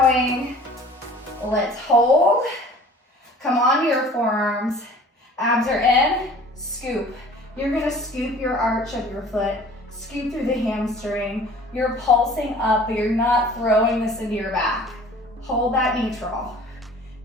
Let's hold. Come onto your forearms. Abs are in, scoop. You're gonna scoop your arch of your foot, scoop through the hamstring. You're pulsing up, but you're not throwing this into your back. Hold that neutral.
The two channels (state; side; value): normal; both; correlation 0.48